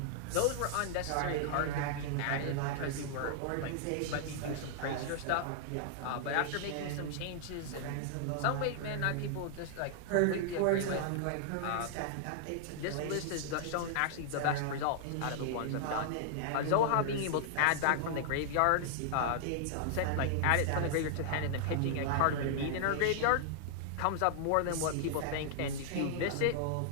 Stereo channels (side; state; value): both; different; correlation -0.01